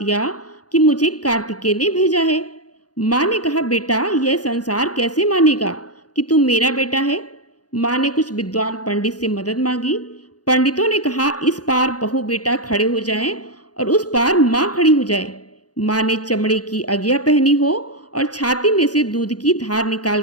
कि मुझे कार्तिकेय ने भेजा है। माँ ने कहा, बेटा यह संसार कैसे मानेगा कि तू मेरा बेटा है? माँ ने कुछ विद्वान पंडित से मदद मांगी। पंडितों ने कहा, इस पार बहू बेटा खड़े हो जाएं और उस पार माँ खड़ी हो जाए। माँ ने चमड़े की अगिया पहनी हो और छाती में से दूध की धार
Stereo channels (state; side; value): late; right; 0.68 ms